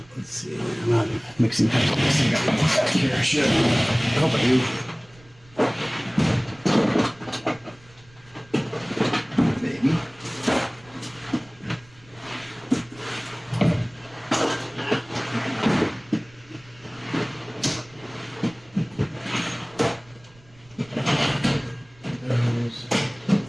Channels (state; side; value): noise; right; rumble, 27 dB below the sound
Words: Let's see. I'm not mixing cups on this thing. I got one back here. I should. I hope I do. Maybe.